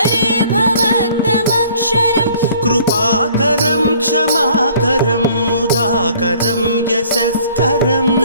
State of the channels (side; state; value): both; inverted; correlation -0.56